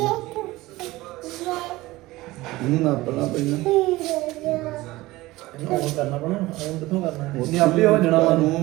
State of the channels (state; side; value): quieter; left; 19.0 dB